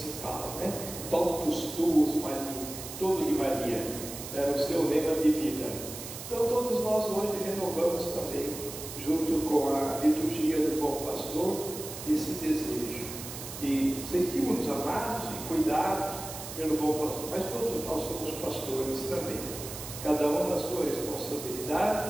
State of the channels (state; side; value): noise; right; hiss, 10 dB below the sound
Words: fala, né? Totus tuus Maria, todo de Maria, era o seu lema de vida. Então todos nós hoje renovamos também, junto com a liturgia do Bom Pastor, esse desejo. E sentimos-nos amados e cuidados pelo Bom Pastor, mas todos nós somos pastores também, cada um na sua